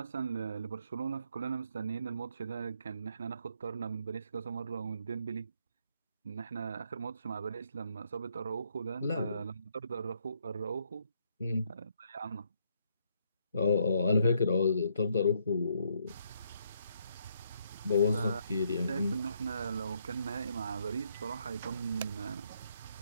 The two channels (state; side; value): inverted; both; correlation -0.72